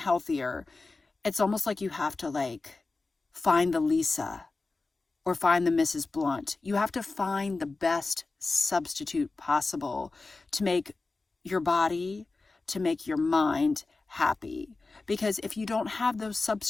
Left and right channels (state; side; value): quieter; right; 3.6 dB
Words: it's almost like you have to like find the Lisa or find the Mrs. Blunt. You have to find the best substitute possible to make your body, to make your mind happy. Because if you don't have those